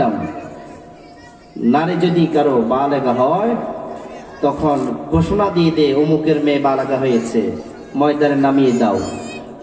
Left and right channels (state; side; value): identical; both; correlation 1.00